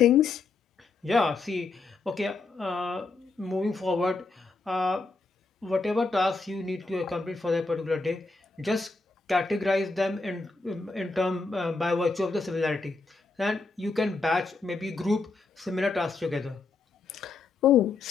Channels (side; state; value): right; quieter; 3.9 dB